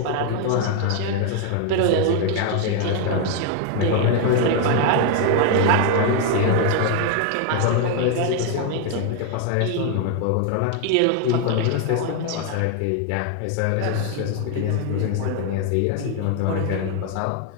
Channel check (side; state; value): both; different; correlation 0.00